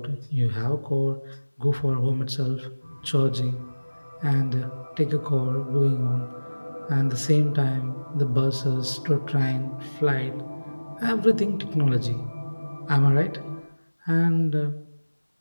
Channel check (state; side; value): inverted; both; correlation -1.00